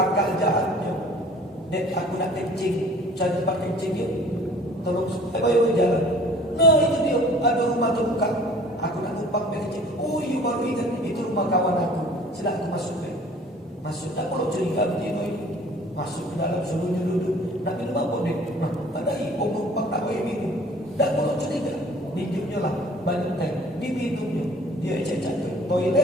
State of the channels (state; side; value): normal; both; correlation 0.50